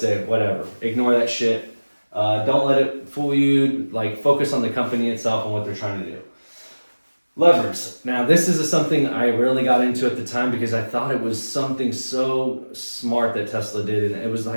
whatever. Ignore that shit. Don't let it fool you. Like, focus on the company itself and what they're trying to do. Levers. Now, this is something I really got into at the time because I thought it was something so smart that Tesla did, and it was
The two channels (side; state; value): both; inverted; correlation -1.00